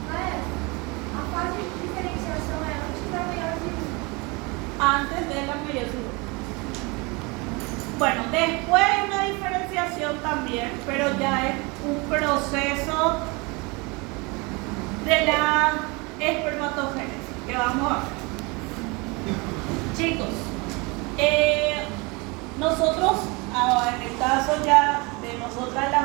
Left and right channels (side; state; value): left; quieter; 27.3 dB